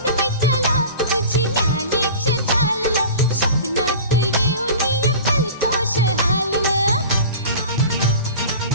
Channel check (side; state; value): both; inverted; correlation -0.37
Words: मैत्याला तुझी न्यालीच चाललं, स्वप्नात येऊन फलतोष हाललं.